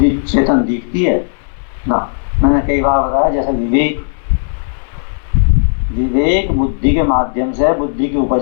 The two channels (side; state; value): right; silent; digital silence